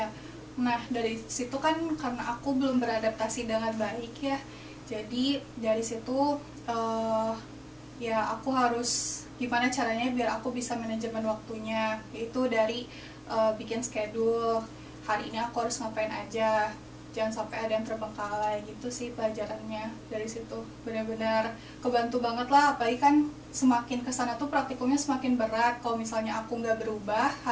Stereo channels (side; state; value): both; identical; correlation 1.00